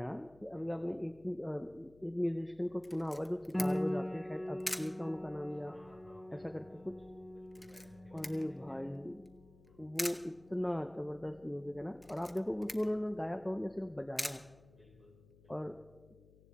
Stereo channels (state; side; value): noise; left; hum, 24 dB below the sound